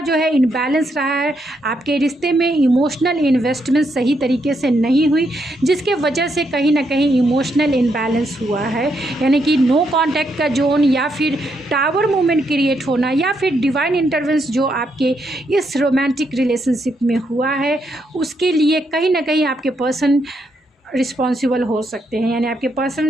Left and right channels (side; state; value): both; normal; correlation 0.78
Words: जो है इनबैलेंस रहा है। आपके रिश्ते में इमोशनल इन्वेस्टमेंट सही तरीके से नहीं हुई, जिसके वजह से कहीं ना कहीं इमोशनल इनबैलेंस हुआ है, यानी कि नो कांटेक्ट का जोन या फिर टावर मूवमेंट क्रिएट होना या फिर डिवाइन इंटरवेंस जो आपके इस रोमांटिक रिलेशनशिप में हुआ है, उसके लिए कहीं ना कहीं आपके पर्सन रिस्पॉन्सिबल हो सकते हैं, यानी आपके